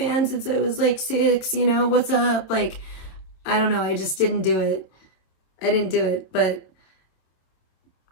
since I was like 6, what's up? Like, I don't know. I just didn't do it. I didn't do it. But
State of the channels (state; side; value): late; right; 27 ms